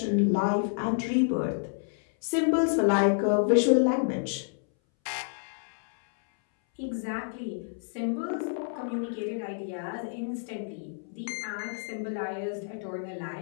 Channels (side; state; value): right; silent; 59 dB below the other